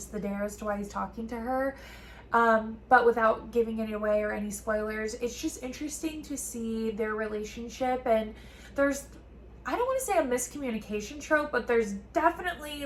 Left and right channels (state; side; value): identical; both; correlation 1.00